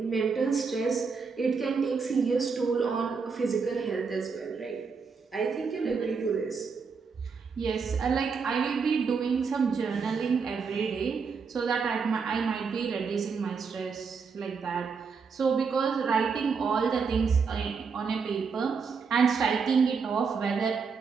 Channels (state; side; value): quieter; left; 5.4 dB